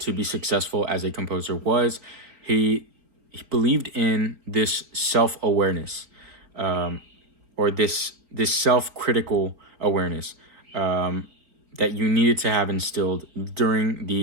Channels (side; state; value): left; late; 3.9 ms